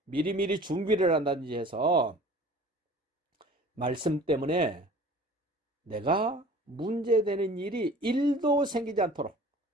미리미리 준비를 한다든지 해서 말씀 때문에 내가 문제되는 일이 1도 생기지 않도록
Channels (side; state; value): both; normal; correlation 0.45